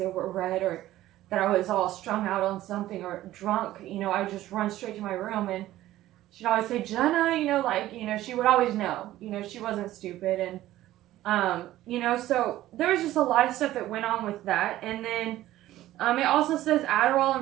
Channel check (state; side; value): quieter; left; 14.8 dB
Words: were red, or that I was all strung out on something or drunk. You know, I would just run straight to my room, and she'd always say, Jenna, you know, like, you know, she would always know, you know, she wasn't stupid. And you know, so there was just a lot of stuff that went on with that. And then it also says Adderall